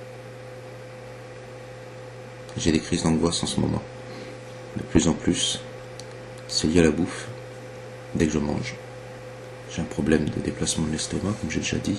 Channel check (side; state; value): both; identical; correlation 1.00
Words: J'ai des crises d'angoisse en ce moment. De plus en plus, c'est lié à la bouffe. Dès que je mange, j'ai un problème de déplacement de l'estomac, comme j'ai déjà